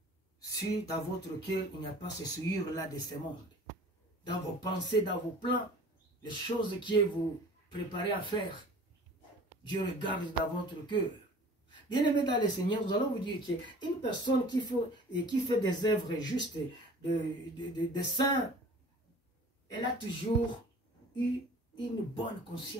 Si dans votre cœur, il n'y a pas ce souillure-là de ce monde, dans vos pensées, dans vos plans, les choses que vous préparez à faire, Dieu regarde dans votre cœur. Bien-aimés dans le Seigneur, nous allons vous dire qu'une personne qui fait des œuvres justes, de saints, elle a toujours eu une bonne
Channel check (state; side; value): normal; both; correlation 0.46